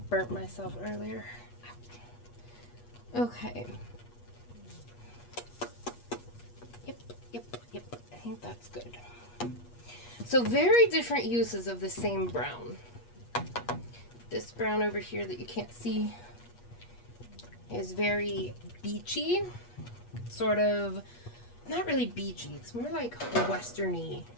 burnt myself earlier. Okay. Yep. I think that's good. So very different uses of the same brown. This brown over here that you can't see is very beachy, sort of not really beachy. It's more like westerny,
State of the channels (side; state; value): right; late; 8.4 ms